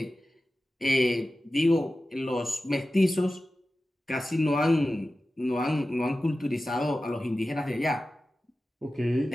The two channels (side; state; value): both; normal; correlation 0.94